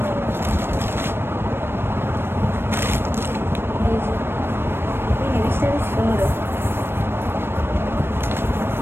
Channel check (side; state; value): left; late; 0.11 ms